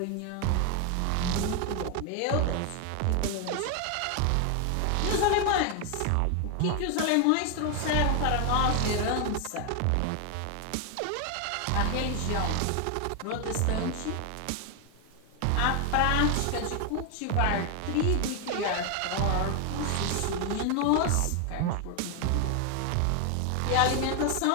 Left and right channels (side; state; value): both; different; correlation 0.01